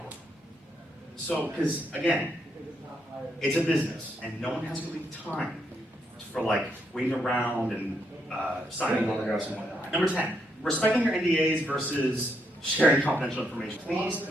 So, because again, it's a business, and no one has really time for like waiting around and signing autographs and whatnot. Number 10, respecting your NDAs versus sharing confidential information. Please,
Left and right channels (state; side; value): normal; both; correlation 0.77